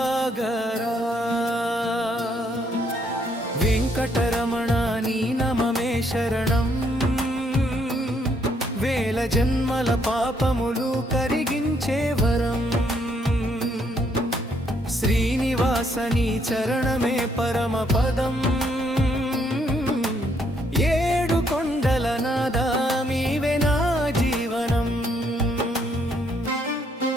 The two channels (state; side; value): normal; both; correlation 0.71